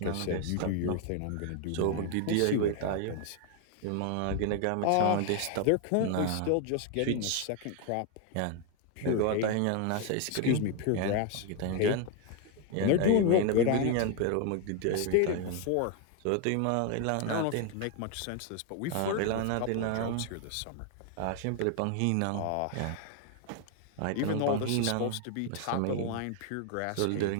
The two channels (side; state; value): both; different; correlation 0.01